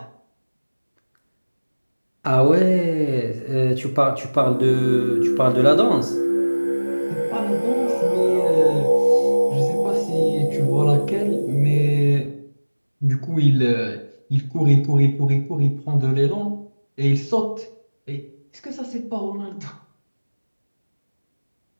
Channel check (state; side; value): inverted; both; correlation -1.00